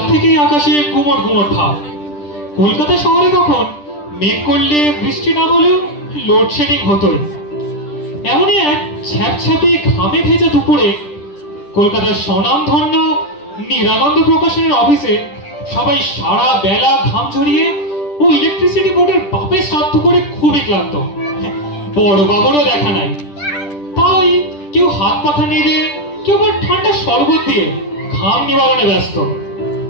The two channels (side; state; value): right; late; 10 ms